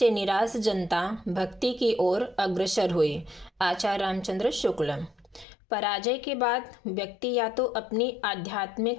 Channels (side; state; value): right; drops out; at 5.5 s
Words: निराश जनता भक्ति की ओर अग्रसर हुई। आचार्य रामचंद्र शुक्ल। पराजय के बाद व्यक्ति या तो अपनी